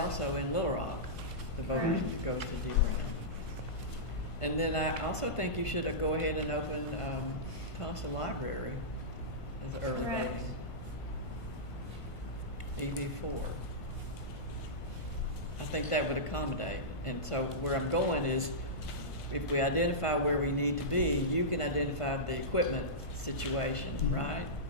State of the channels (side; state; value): right; late; 1.5 ms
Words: in Little Rock, the voters Right. that goes to D. Brown. And then I also think you should go ahead and open Thompson Library as early Correct. voting. EV4. I think that would accommodate. And so where I'm going is, if we identify where we need to be, you can identify the equipment situation, Mhm. right?